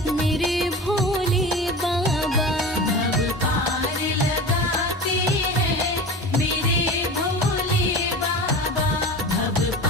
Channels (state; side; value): normal; both; correlation 0.32